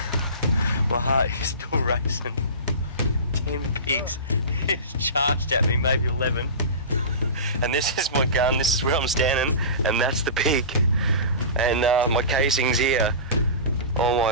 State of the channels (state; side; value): inverted; both; correlation -0.30